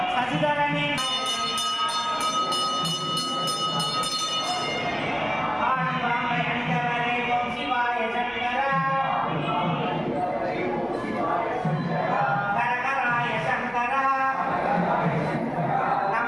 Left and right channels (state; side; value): identical; both; correlation 1.00